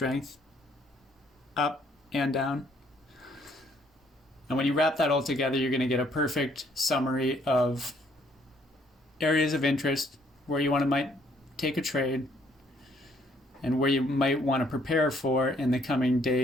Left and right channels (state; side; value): normal; both; correlation 0.66